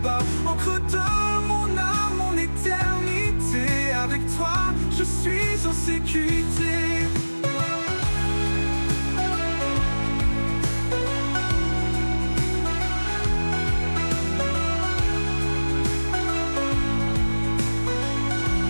Encre de mon âme, mon éternité. Avec toi, je suis en sécurité.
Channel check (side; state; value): both; inverted; correlation -1.00